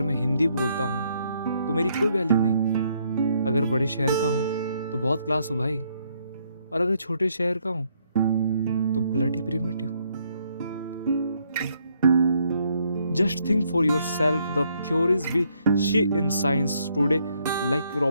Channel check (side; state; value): both; inverted; correlation -0.72